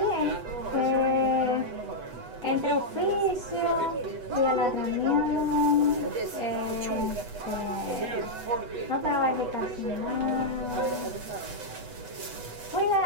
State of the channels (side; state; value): left; late; 8.1 ms